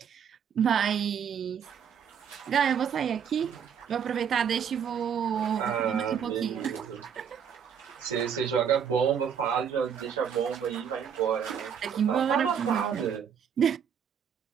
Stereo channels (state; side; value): quieter; left; 7.8 dB